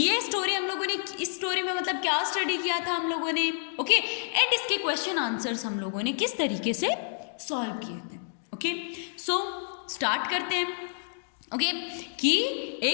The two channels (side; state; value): right; silent; digital silence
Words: हम लोगों ने इस स्टोरी में मतलब क्या स्टडी किया था हम लोगों ने, ओके एंड इसके क्वेश्चन आंसर्स हम लोगों ने किस तरीके से सॉल्व किए थे। ओके सो स्टार्ट करते हैं। ओके कि